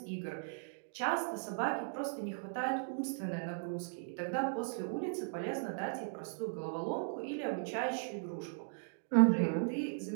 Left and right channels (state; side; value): silent; left; digital silence